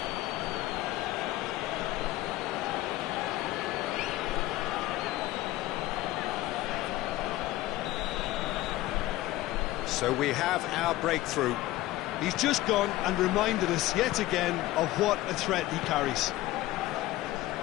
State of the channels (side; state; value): right; quieter; 16.6 dB